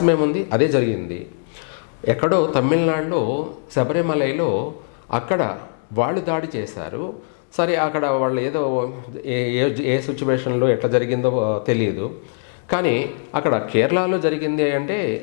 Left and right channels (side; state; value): right; silent; digital silence